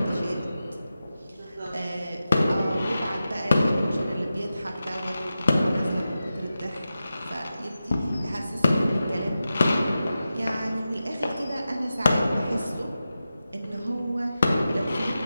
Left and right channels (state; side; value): inverted; both; correlation -0.92